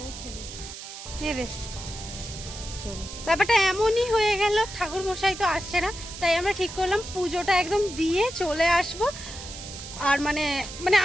খেলে ব্যাপারটা এমনই হয়ে গেল। ঠাকুর মশাই তো আসছে না, তাই আমরা ঠিক করলাম পুজোটা একদম দিয়ে চলে আসব। আর মানে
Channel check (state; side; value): noise; right; hiss, 12 dB below the sound